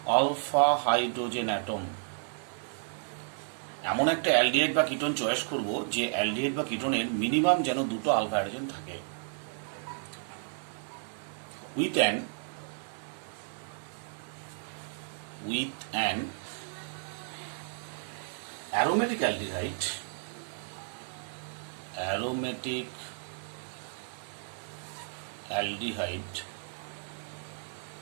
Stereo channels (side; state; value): left; silent; 56 dB below the other